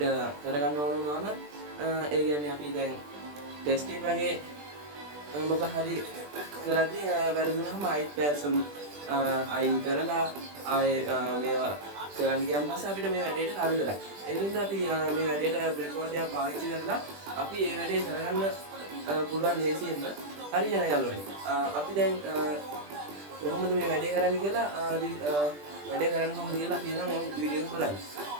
කරගන්න ඕන වුණාම ඒ කියන්නේ අපි දැන් ටෙස්ටිං වගේ මොකක් හරි කරද්දී වැරදුනහම ආයෙත් පැසම් අයින් කරලා ආයේ මේවා කරන්න ගියම පස්සේ අපිට මේ වැඩේට හරියලා. ඒ නිසා අපි මේ වැඩේට breadboard එක පාවිච්චි කරලා අපි මේ වැඩේ කරගන්න පුළුවන් ලේසියෙන්ම හරියන යාළුවනේ. අපි දැන් කොහොමද මේ වැඩේ කරන්නේ කියලා වැඩේ කරන්න කොහොමද කියලා අපි නම් වීඩියෝ එක බලන්න.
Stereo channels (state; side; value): late; left; 20 ms